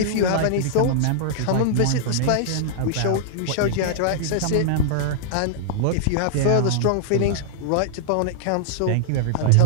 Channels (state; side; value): different; both; correlation -0.01